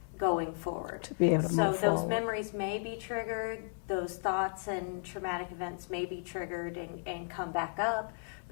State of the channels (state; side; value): silent; right; 55 dB below the other